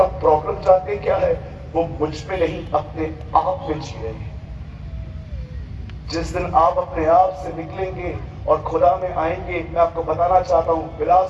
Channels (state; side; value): identical; both; correlation 1.00